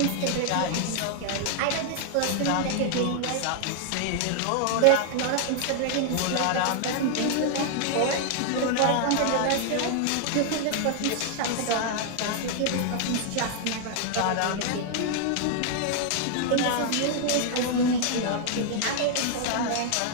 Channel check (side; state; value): both; different; correlation 0.00